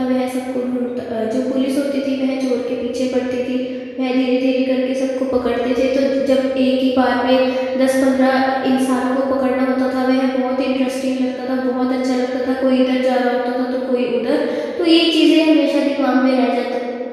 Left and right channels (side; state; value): both; identical; correlation 1.00